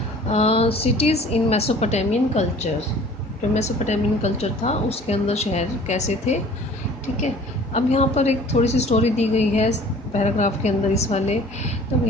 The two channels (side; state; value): both; normal; correlation 0.49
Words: सिटीज़ इन मेसोपोटामियन कल्चर। जो मेसोपोटामियन कल्चर था उसके अंदर शहर कैसे थे। ठीक है, अब यहाँ पर एक थोड़ी सी स्टोरी दी गई है पैराग्राफ के अंदर इस वाले। तो